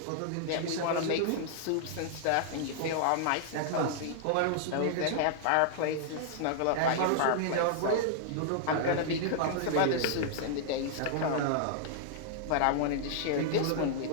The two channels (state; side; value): different; both; correlation -0.01